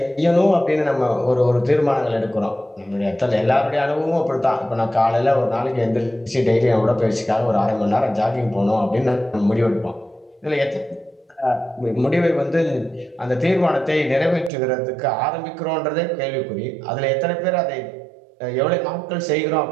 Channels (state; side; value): drops out; left; at 14.5 s